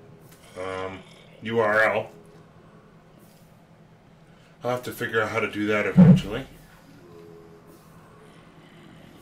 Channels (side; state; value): both; identical; correlation 1.00